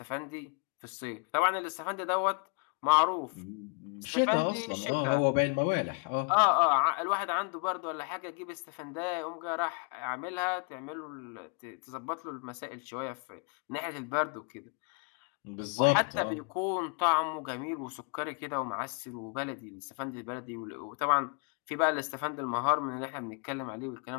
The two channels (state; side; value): quieter; right; 37.3 dB